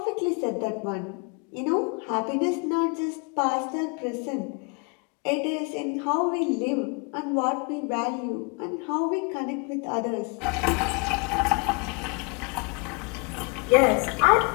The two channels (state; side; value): quieter; right; 32.9 dB